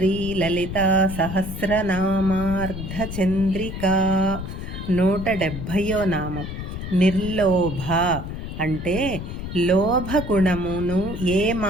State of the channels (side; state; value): left; noise; rumble, 7 dB below the sound